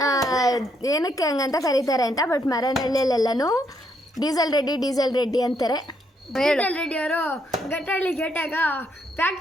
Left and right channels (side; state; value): both; normal; correlation 0.74